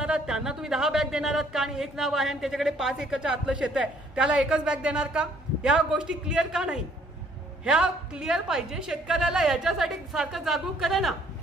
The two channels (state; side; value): normal; both; correlation 0.63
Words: त्यांना तुम्ही 10 बॅग देणार आहात का? आणि 1 नाव आहे आणि त्याच्याकडे 5 एकरच्या आतलं शेत आहे, त्याला एकच बॅग देणार का? या गोष्टी क्लिअर का नाही? ह्या क्लिअर पाहिजे. शेतकऱ्याला याच्यासाठी सारखं जागरूक करा ना.